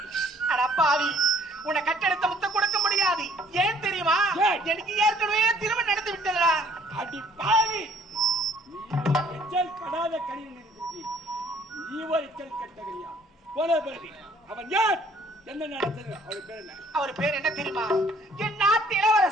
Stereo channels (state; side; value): normal; both; correlation 0.59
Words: அட பாவி, உன்னை கட்டெடுத்த முத்தம் கொடுக்க முடியாது. ஏன் தெரியுமா? எனக்கு ஏற்கனவே திருமணம் நடந்து விட்டதா. அடி பாவி, நீ எச்சல் படாத கனியில் இருக்கிறீ, நீ ஒரு எச்சல் கட்டகரியா போல பிறகு அவன் யார்? என்ன நடந்தது? அவர் பேர் என்ன? அவர் பேர் என்ன தெரியுமா? என் நாட்டு